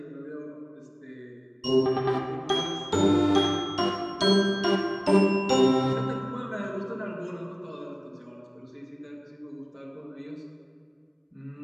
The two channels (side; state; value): both; identical; correlation 1.00